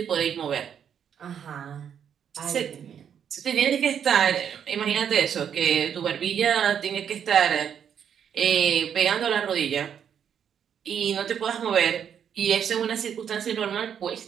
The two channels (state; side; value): quieter; left; 8.4 dB